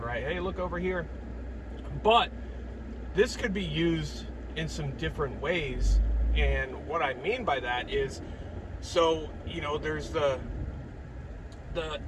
Hey, look over here. But this could be used in some different ways. And what I mean by that is, so, there's the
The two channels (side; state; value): both; identical; correlation 1.00